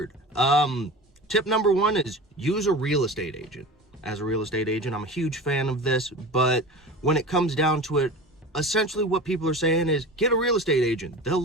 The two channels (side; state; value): both; normal; correlation 0.33